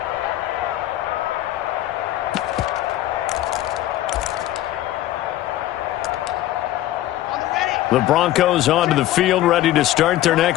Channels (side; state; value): right; quieter; 14.2 dB